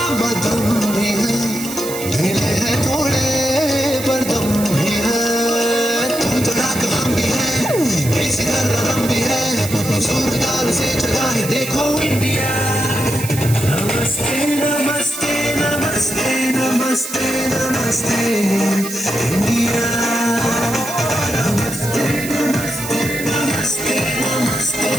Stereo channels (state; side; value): noise; right; hiss, 9 dB below the sound